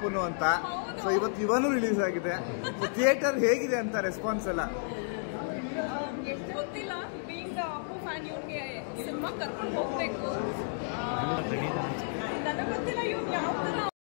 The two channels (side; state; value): right; silent; digital silence